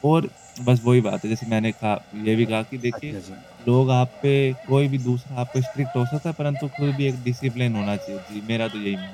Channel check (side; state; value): both; identical; correlation 1.00